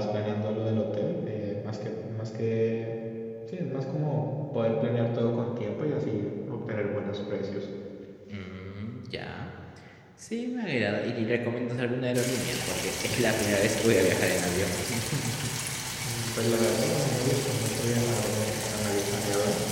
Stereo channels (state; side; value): identical; both; correlation 1.00